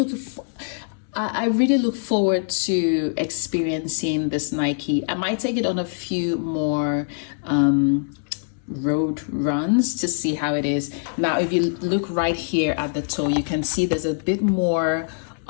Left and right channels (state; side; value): silent; right; 63 dB below the other